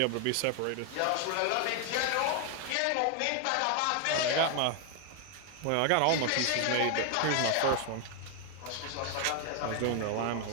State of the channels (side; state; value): both; different; correlation 0.00